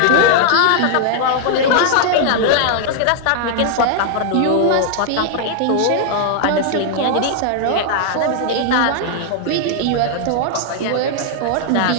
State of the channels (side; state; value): both; different; correlation 0.00